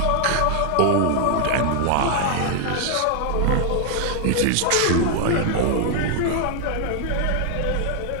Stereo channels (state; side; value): different; both; correlation 0.00